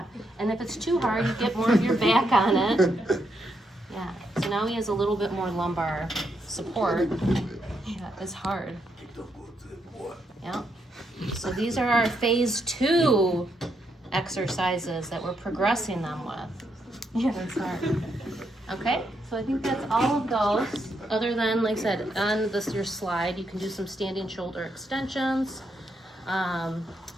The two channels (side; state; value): both; normal; correlation 0.79